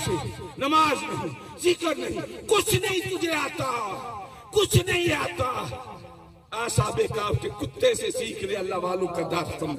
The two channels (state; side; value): identical; both; correlation 1.00